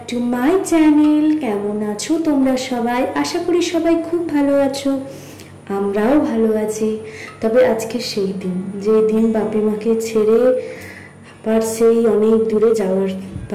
to my channel. কেমন আছো তোমরা সবাই? আশা করি সবাই খুব ভালো আছো, আমরাও ভালো আছি। তবে আজকে সেই দিন, যে দিন বাপি মাকে ছেড়ে আবার সেই অনেক দূরে যাওয়ার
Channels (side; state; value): both; identical; correlation 1.00